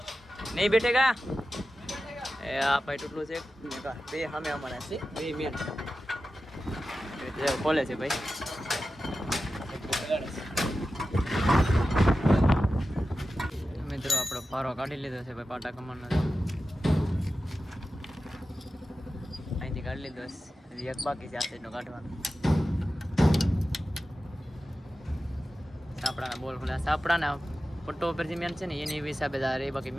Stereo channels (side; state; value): both; normal; correlation 0.93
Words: નહીં બેઠેગા. એ આ ભાઈ તૂટલું છે બે સામે અમારા છે, બે મેન ખોલે છે ભાઈ. મિત્રો આપણો પારો કાઢી લીધો છે ભાઈ પાટા કમાનો. અહીંથી કાઢી લીધો, એક બાકી છે આ સાઈડનો કાઢવાનો. સાપડાના બોલ ખોલ્યા, સાપડાના પટ્ટો ઉપર જે મેન છે ને એની હિસાબે એ બાકી